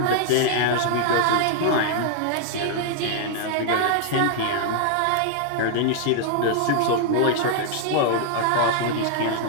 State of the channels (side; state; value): both; different; correlation 0.00